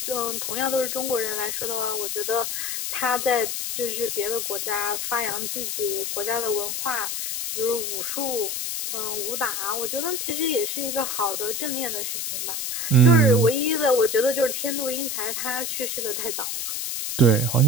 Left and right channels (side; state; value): left; noise; hiss, 2 dB below the sound